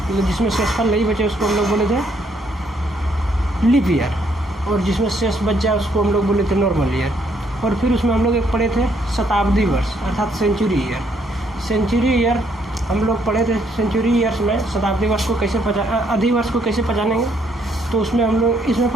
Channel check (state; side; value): normal; both; correlation 0.70